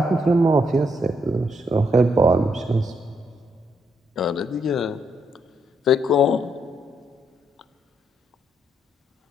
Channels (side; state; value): both; normal; correlation 0.77